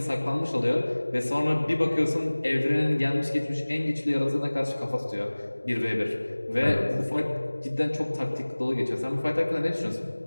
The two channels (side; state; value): both; inverted; correlation -1.00